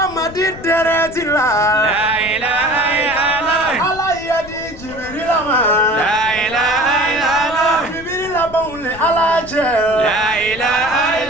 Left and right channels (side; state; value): left; noise; rumble, 17 dB below the sound